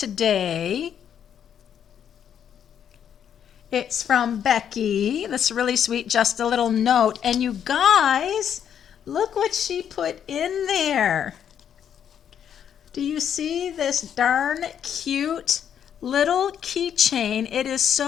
It's from Becky. That's really sweet, just a little note. And you guys, look what she put in there. Do you see this darn cute little keychain? It is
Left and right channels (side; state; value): right; quieter; 8.8 dB